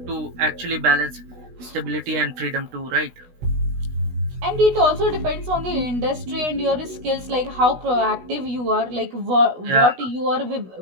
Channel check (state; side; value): late; left; 16 ms